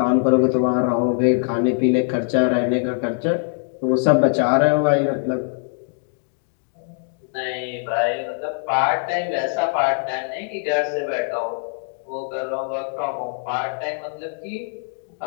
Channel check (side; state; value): right; silent; 62 dB below the other